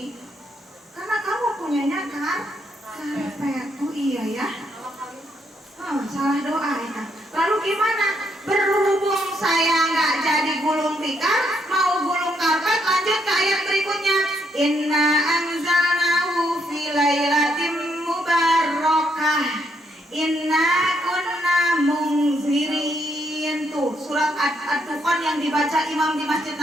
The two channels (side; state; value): both; normal; correlation 0.75